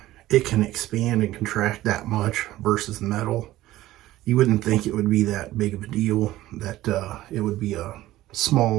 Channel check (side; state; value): left; quieter; 15.7 dB